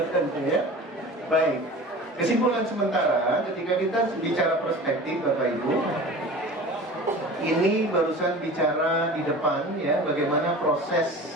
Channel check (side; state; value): both; normal; correlation 0.38